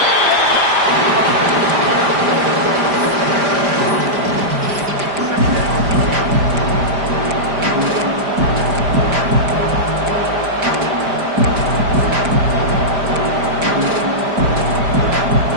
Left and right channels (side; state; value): left; late; 5.0 ms